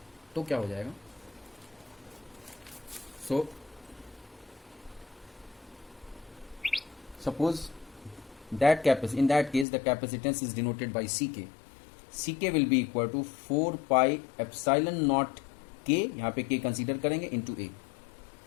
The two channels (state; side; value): drops out; right; at 9.7 s